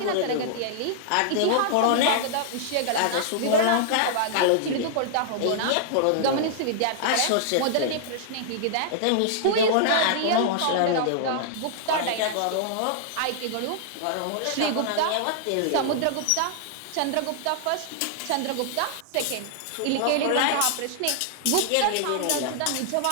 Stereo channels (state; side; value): different; both; correlation -0.01